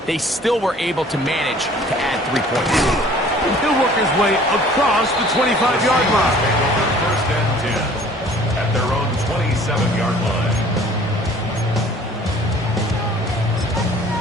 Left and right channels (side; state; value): both; normal; correlation 0.51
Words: they still were able to manage to add 3 points. He'll work his way across the 25-yard line. first and 10 at their own 27-yard line.